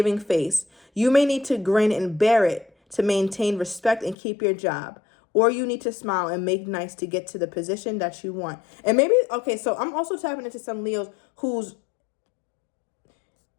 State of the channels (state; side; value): drops out; right; at 4.2 s